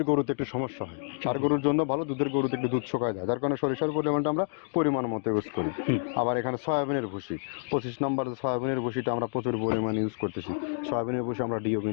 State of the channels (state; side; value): silent; right; digital silence